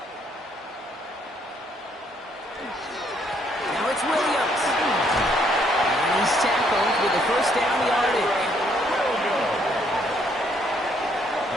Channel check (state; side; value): normal; both; correlation 0.69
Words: Now it's Williams. And he's tackled with the first down yardage.